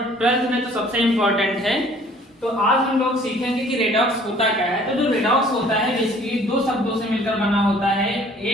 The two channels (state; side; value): normal; both; correlation 0.55